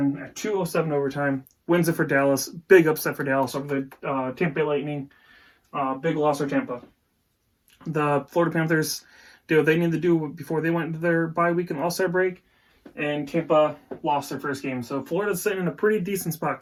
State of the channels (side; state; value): both; identical; correlation 1.00